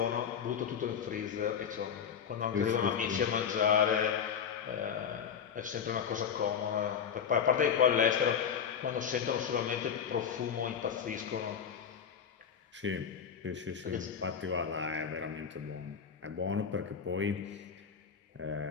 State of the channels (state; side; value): quieter; right; 7.4 dB